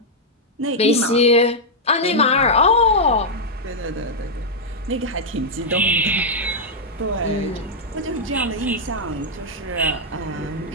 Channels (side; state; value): both; normal; correlation -0.04